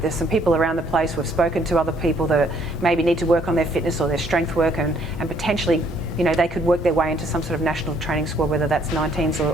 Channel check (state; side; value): normal; both; correlation 0.65